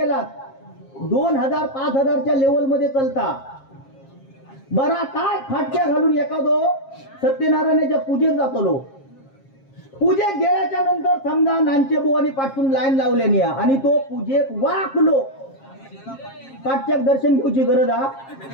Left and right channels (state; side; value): late; right; 7.4 ms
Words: 2000-5000च्या लेवल मध्ये चलता. बरा काय फाटक्या घालून एखादो सत्यनारायणाच्या पूजेत जातो. पूजेत गेल्याच्या नंतर समजा नांचे बुवानी पाठवून लाईन लावल्याने आणि तो पूजेत वाकलो. पाठच्याक दर्शन घेऊची गरज हा.